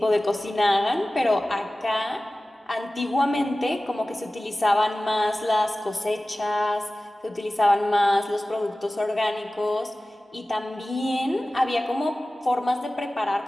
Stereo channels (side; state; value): both; normal; correlation 0.97